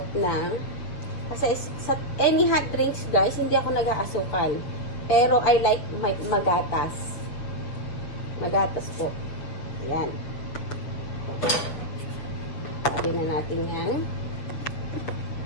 na. Kasi sa any hot drinks, guys, hindi ako nag-aasukal. Pero I like magatas. Magatas po. Ayan. Sabi na natin yan.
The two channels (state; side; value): late; right; 7.2 ms